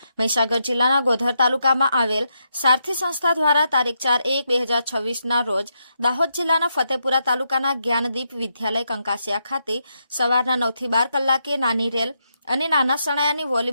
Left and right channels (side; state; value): both; inverted; correlation -0.81